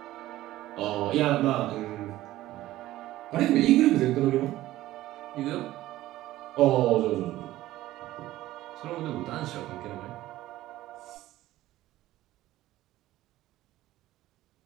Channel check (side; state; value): left; quieter; 15.5 dB